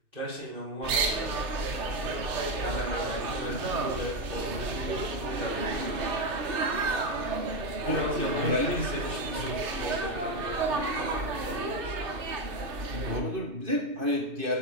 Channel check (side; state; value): left; late; 2.6 ms